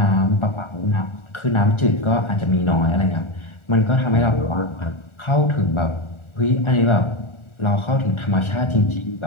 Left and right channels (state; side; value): late; right; 1.4 ms